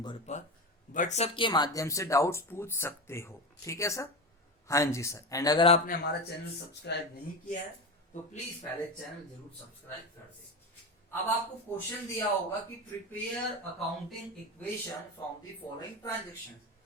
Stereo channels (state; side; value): normal; both; correlation 0.21